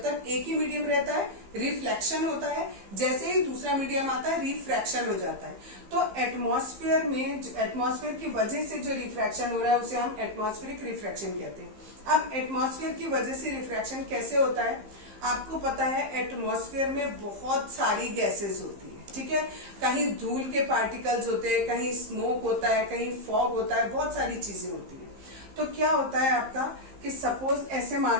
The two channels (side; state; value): left; late; 15 ms